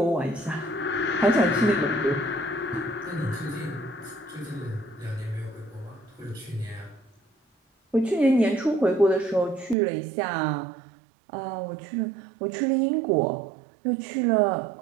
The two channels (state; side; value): drops out; left; at 9.8 s